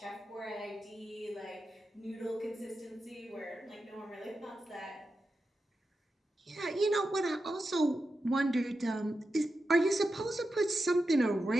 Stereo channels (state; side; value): normal; both; correlation 0.90